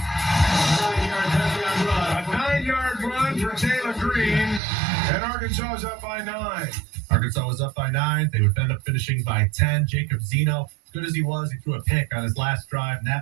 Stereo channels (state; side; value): drops out; left; at 4.6 s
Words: A 9-yard run for Taylor Green, and Arkansas is up by 9. Arkansas was up by 9. They would end up finishing by 10. Jacob Zeno, good as he was, he threw a pick on his last drive, and